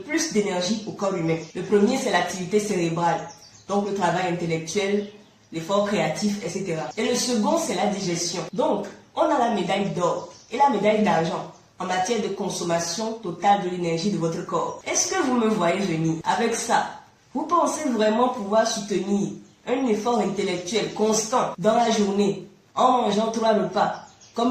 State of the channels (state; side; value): identical; both; correlation 1.00